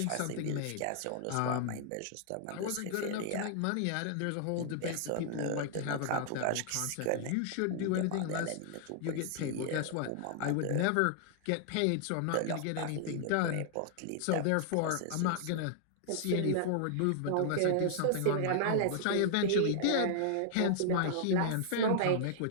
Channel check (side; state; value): both; different; correlation -0.01